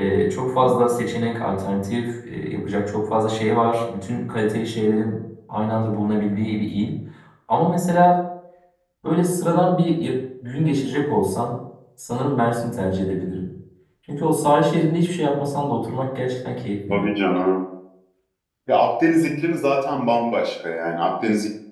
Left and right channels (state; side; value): identical; both; correlation 1.00